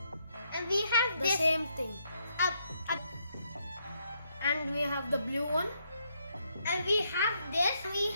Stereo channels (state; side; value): inverted; both; correlation -0.76